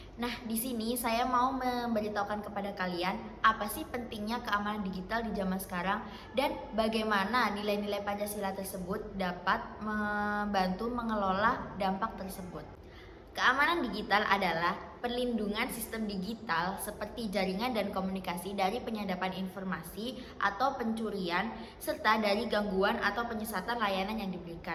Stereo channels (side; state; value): both; identical; correlation 1.00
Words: Nah, di sini saya mau memberitahukan kepada kalian apa sih pentingnya keamanan digital di zaman sekarang dan bagaimana nilai-nilai Pancasila tersebut dapat membantu mengelola dampak tersebut. Keamanan digital adalah perlindungan sistem digital seperti jaringan dan komunikasi dari penyadapan informasi atau pencurian serta dari gangguan atau penyesatan layanan yang